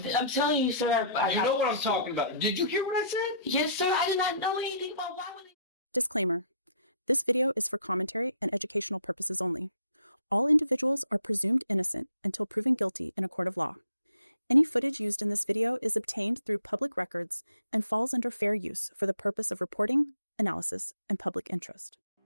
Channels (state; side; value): inverted; both; correlation -0.62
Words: I'm telling you, sir. You know what I'm talking about. Did you hear what I said? Yes, sir. I did not know anything about why would they. Disclaimer. This video is for commentary and educational purposes only. All individuals are presumed innocent until proven guilty in a court of law. Any footage used in this video is obtained through public records and falls under fair use for the purpose of reporting, analysis, and public interest.